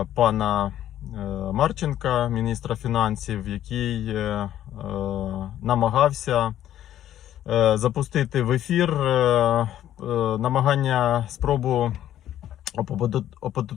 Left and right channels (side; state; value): right; quieter; 11.8 dB